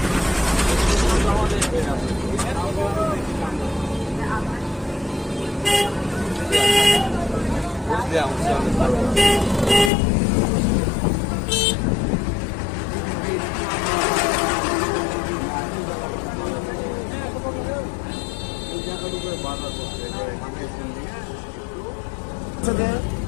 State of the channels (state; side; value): drops out; right; at 9.9 s